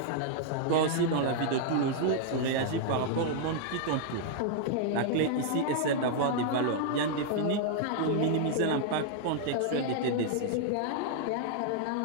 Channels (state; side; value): different; both; correlation -0.01